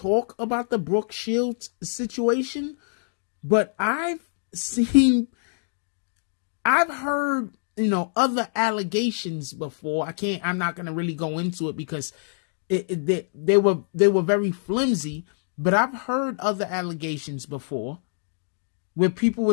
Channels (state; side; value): silent; right; digital silence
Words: about the Brooke Shields situation, but I've heard, other allegations before. I'm not going to really go into it because they were very flimsy, but I've heard other allegations before where people were